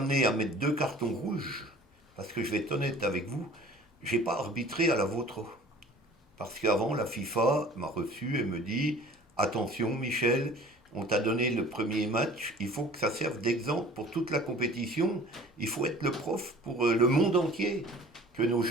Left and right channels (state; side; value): normal; both; correlation 0.47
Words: à mettre 2 cartons rouges, parce que je vais être honnête avec vous, j'ai pas arbitré à la vôtre. Parce qu'avant, la FIFA m'a reçu et me dit attention, Michel, on t'a donné le premier match, il faut que ça serve d'exemple pour toute la compétition. Il faut être le prof pour le monde entier. Que nos